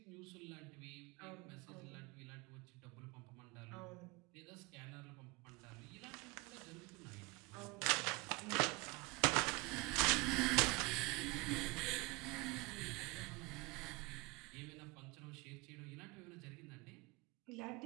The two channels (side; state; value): left; quieter; 26.2 dB